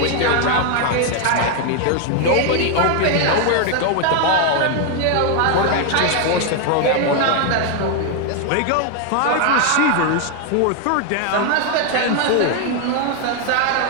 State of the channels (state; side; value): different; both; correlation 0.01